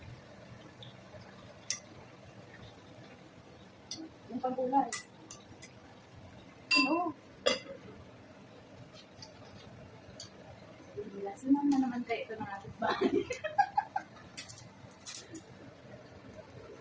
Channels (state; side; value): identical; both; correlation 1.00